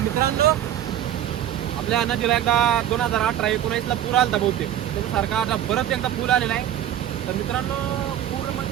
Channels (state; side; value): quieter; left; 11.2 dB